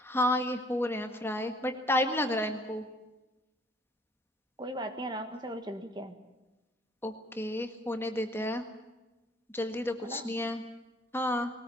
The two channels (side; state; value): both; normal; correlation 0.58